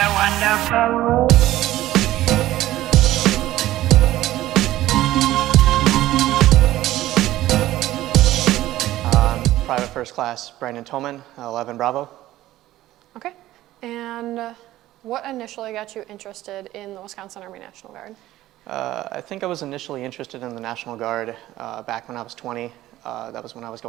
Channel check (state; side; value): quieter; left; 15.1 dB